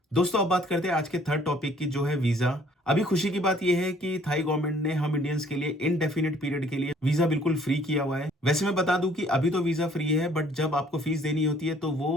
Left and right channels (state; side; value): normal; both; correlation 0.59